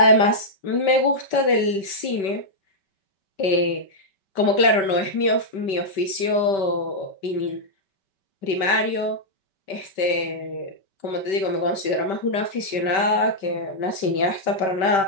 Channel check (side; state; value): right; late; 5.2 ms